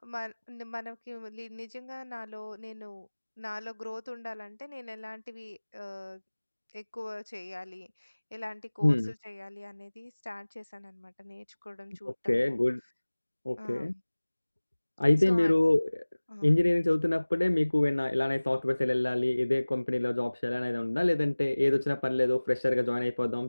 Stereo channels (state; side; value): inverted; both; correlation -1.00